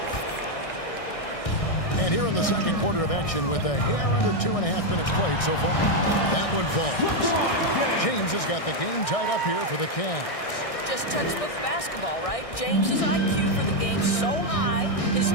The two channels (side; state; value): right; late; 1.6 ms